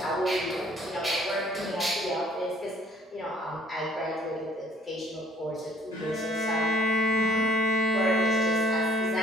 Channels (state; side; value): normal; both; correlation 0.59